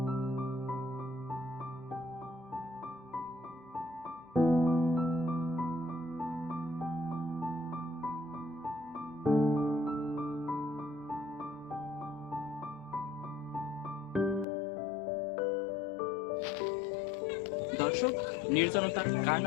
দর্শক, নির্জনতা কার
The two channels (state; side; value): drops out; right; at 14.5 s